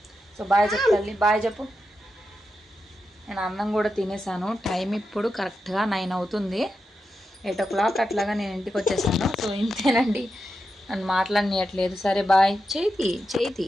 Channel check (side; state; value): both; normal; correlation 0.88